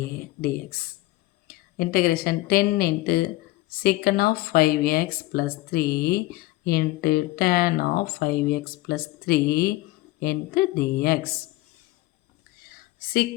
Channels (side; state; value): right; quieter; 18.7 dB